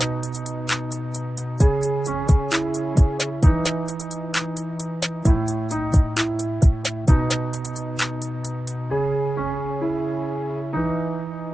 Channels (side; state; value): both; normal; correlation 0.94